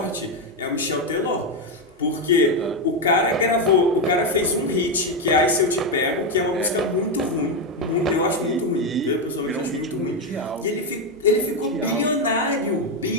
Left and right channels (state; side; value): normal; both; correlation 0.07